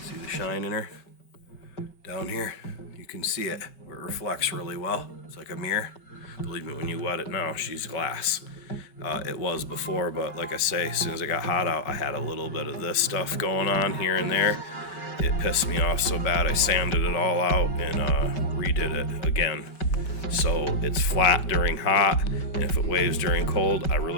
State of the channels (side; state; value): right; late; 5.3 ms